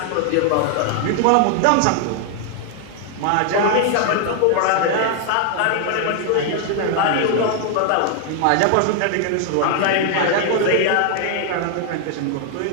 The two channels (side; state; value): both; different; correlation 0.00